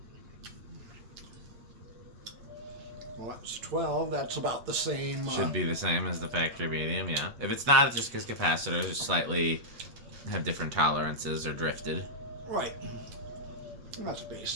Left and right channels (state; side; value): late; left; 8.2 ms